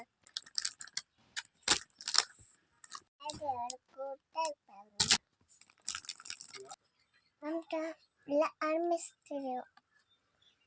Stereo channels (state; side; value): identical; both; correlation 1.00